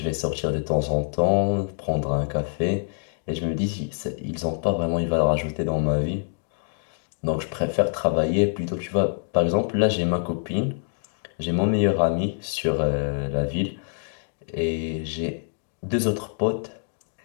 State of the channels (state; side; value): silent; right; digital silence